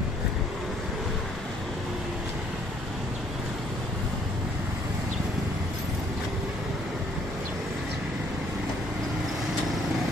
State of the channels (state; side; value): normal; both; correlation 0.64